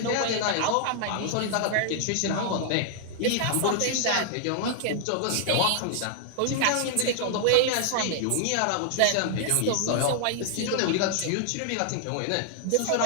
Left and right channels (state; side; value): different; both; correlation 0.00